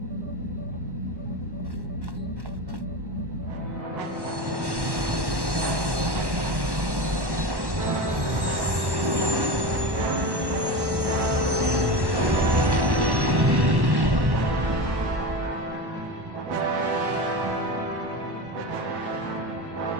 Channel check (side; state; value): left; late; 1.1 ms